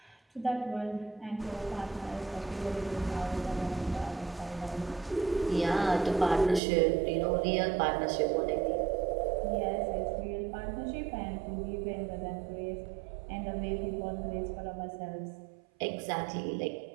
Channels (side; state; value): left; drops out; at 6.6 s